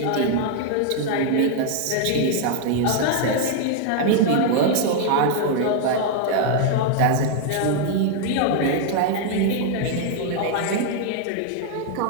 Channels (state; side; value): different; both; correlation 0.00